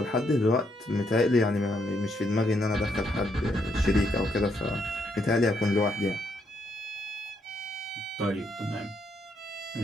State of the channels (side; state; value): both; normal; correlation 0.75